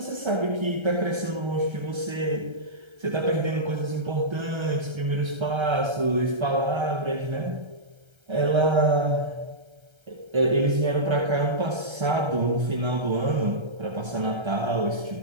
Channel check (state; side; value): late; left; 1.3 ms